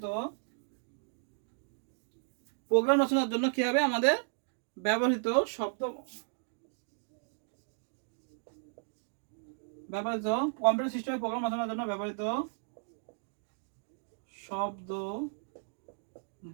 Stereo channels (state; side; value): silent; left; digital silence